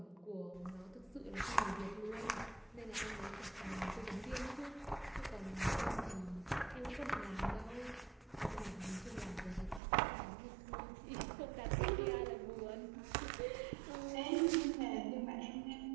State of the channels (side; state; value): left; drops out; at 9.8 s